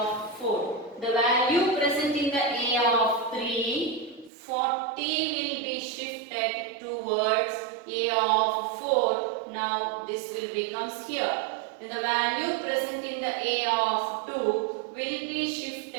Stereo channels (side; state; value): left; drops out; at 4.3 s